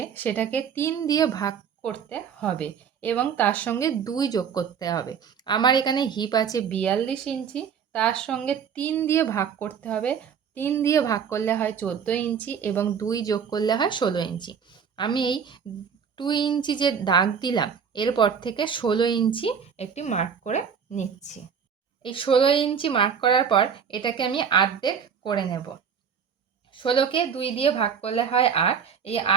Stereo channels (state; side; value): quieter; left; 7.2 dB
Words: সেটাকে 3 দিয়ে ভাগ করতে হবে এবং তার সঙ্গে 2 যোগ করতে হবে। আমার এখানে হিপ আছে 42 ইঞ্চি, তার সঙ্গে 3 দিয়ে ভাগ করতে হবে। 3 দিয়ে ভাগ করলে হয় 14 ইঞ্চি এবং 2 যোগ করলে হয় 16 ইঞ্চি। আমি এই 2 ইঞ্চি যে দাগ দিলাম এরপর থেকে 16 ইঞ্চি একটি মার্ক করে নিচ্ছি। এই 16 ইঞ্চি মার্ক করার পর এটাকে আমি অর্ধেক করে নেব। 16কে 2 দিয়ে ভাগ করলে হয় 8। এই